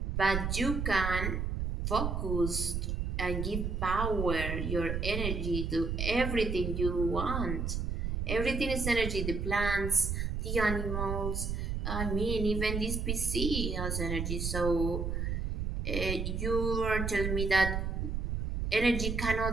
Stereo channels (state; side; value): noise; right; rumble, 1 dB below the sound